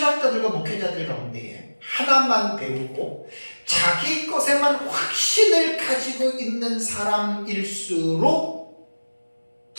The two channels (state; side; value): inverted; both; correlation -1.00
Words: 목회자들 가운데에 하나만 배우고 자기 것에만 확신을 가지고 있는 사람일수록